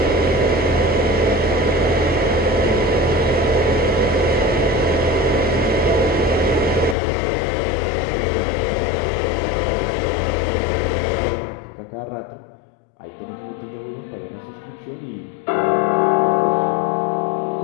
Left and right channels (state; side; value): drops out; right; at 7.0 s